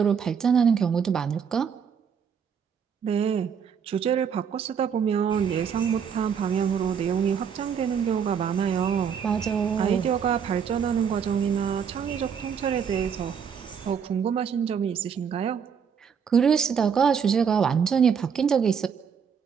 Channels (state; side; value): quieter; left; 7.1 dB